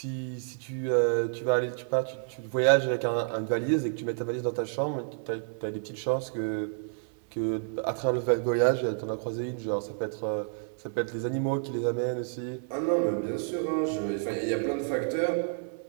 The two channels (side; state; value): left; silent; digital silence